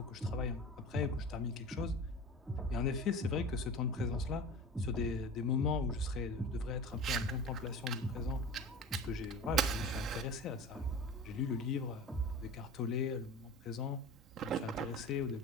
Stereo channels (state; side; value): normal; both; correlation 0.35